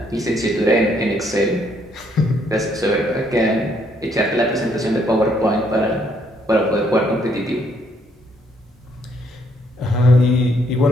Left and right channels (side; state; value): both; normal; correlation 0.70